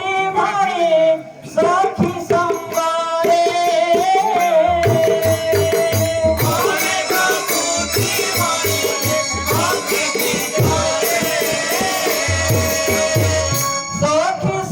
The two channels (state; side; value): identical; both; correlation 1.00